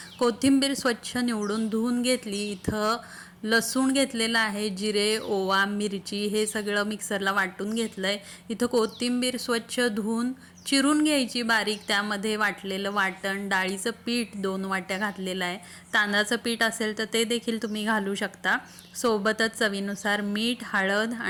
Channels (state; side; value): identical; both; correlation 1.00